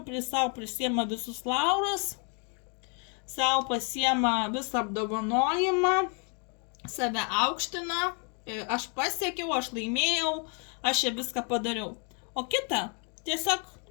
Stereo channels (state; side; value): quieter; right; 38.0 dB